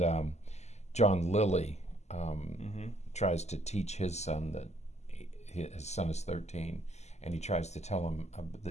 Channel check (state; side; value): late; right; 0.33 ms